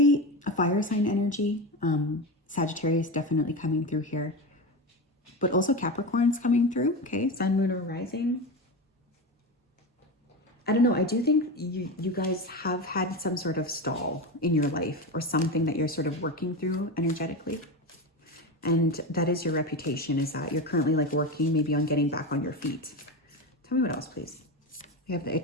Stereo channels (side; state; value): both; normal; correlation 0.21